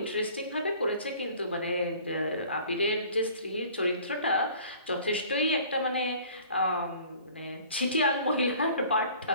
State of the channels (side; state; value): both; inverted; correlation -0.49